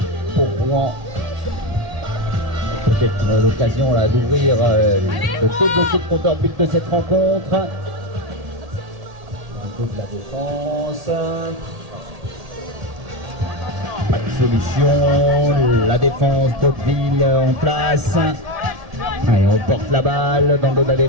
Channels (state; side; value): late; left; 1.8 ms